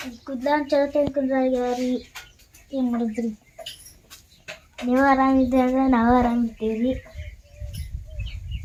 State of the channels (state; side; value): identical; both; correlation 1.00